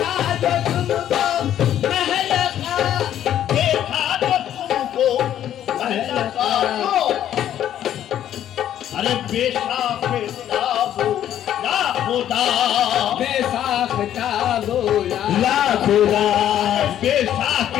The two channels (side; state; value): right; quieter; 11.0 dB